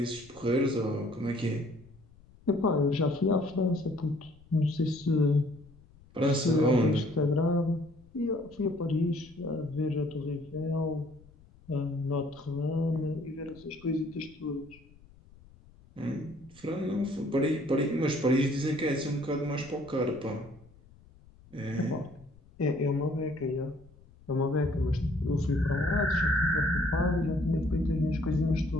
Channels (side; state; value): left; noise; rumble, 25 dB below the sound